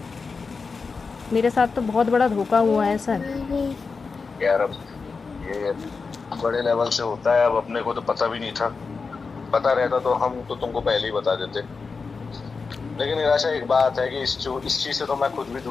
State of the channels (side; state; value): right; quieter; 4.7 dB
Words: मेरे साथ तो बहुत बड़ा धोखा हुआ है सर। यार अब ये बड़े लेवल से होता है, अब अपने को तो पता भी नहीं था। पता रहता तो हम तो तुमको पहले ही बता देते। लेकिन निराशा एक बात है कि इस चीज से तो मैं खुद भी